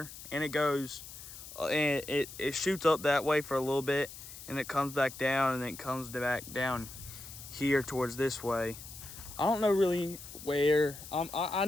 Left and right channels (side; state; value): left; noise; hiss, 14 dB below the sound